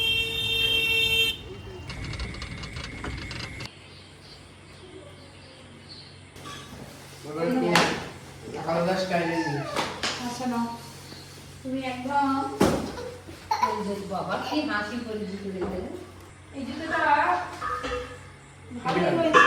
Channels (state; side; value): identical; both; correlation 1.00